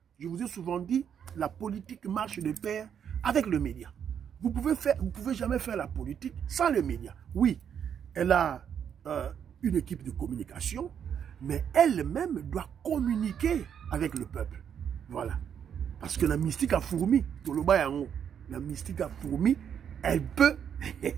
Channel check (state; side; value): quieter; left; 8.3 dB